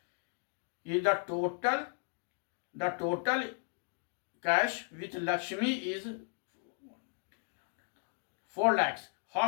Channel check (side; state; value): right; silent; 54 dB below the other